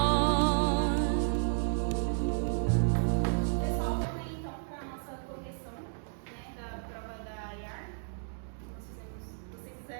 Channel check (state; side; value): silent; left; digital silence